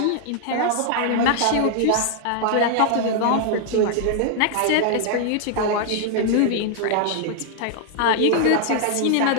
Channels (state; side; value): different; both; correlation 0.00